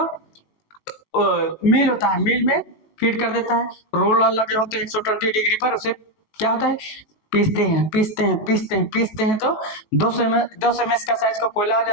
मिल होता है, मिल में फीड कर देता है, रोलर लगे होते हैं 120 डिग्री पर, उसे क्या होता है, पीसते हैं, तो 200 ml का साइज का कोयला हो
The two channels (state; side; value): late; right; 18 ms